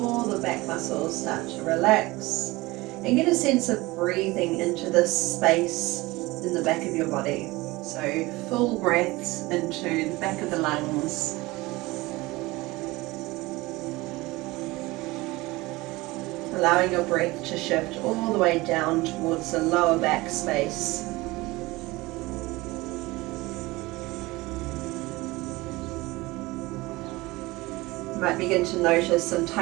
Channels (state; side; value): quieter; left; 21.2 dB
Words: the back muscles start to relax and get a sense of breathing into this space in the back of your body. So full breaths into the back of the lungs. Allowing your breath to shift all the way down towards the lower back space. You might begin to notice some